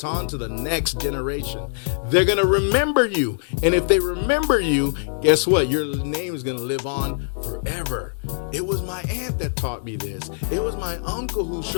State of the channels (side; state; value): right; silent; 63 dB below the other